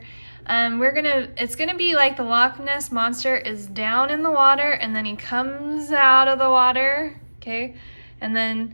It's gonna be like the Loch Ness Monster is down in the water and then he comes out of the water, okay? And then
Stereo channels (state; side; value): inverted; both; correlation -1.00